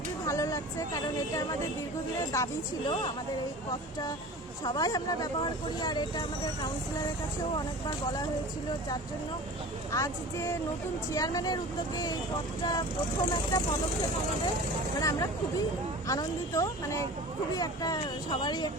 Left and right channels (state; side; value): normal; both; correlation 0.38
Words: ভালো লাগছে, কারণ এটা আমাদের দীর্ঘদিনের দাবি ছিল। আমাদের এই পথটা সবাই আমরা ব্যবহার করি, আর এটা আমাদের কাউন্সিলরের কাছেও অনেকবার বলা হয়েছিল, যার জন্য আজ যে নতুন চেয়ারম্যানের উদ্যোগে এই পথটা প্রথম একটা পদক্ষেপ আমাদের, মানে আমরা খুবই আনন্দিত, মানে খুবই একটা সবারই